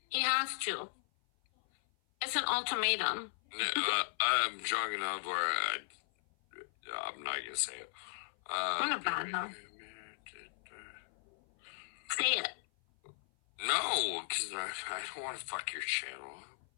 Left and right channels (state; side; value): silent; right; 53 dB below the other